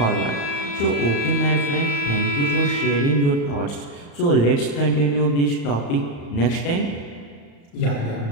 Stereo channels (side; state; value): right; late; 35 ms